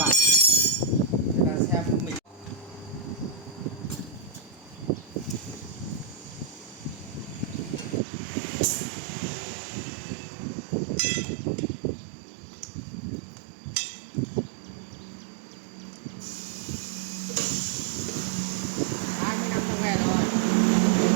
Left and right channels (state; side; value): drops out; left; at 8.0 s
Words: người ta xem mình. Năm trong nghề rồi.